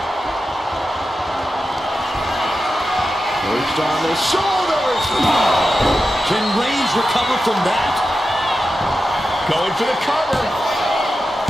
Perched on the shoulders. Can Reigns recover from that? Going for the cover.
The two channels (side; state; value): both; normal; correlation 0.91